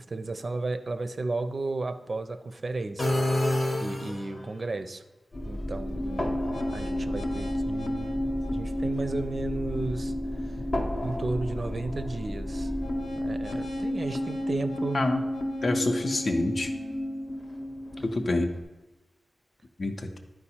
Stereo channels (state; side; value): normal; both; correlation 0.95